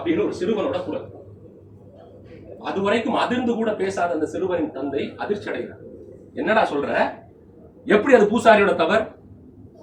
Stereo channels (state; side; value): identical; both; correlation 1.00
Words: ஒரு சிறுவனோட குரல். அதுவரைக்கும் அதிர்ந்து கூட பேசாத அந்த சிறுவனின் தந்தை அதிர்ச்சி அடைகிறார். என்னடா சொல்ற, எப்படி அது பூசாரியோட தவறு?